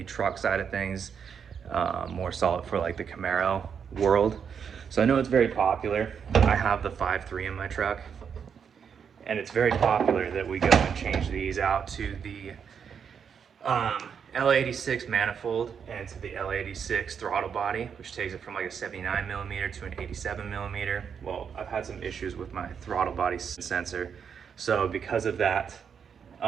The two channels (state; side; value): quieter; left; 7.1 dB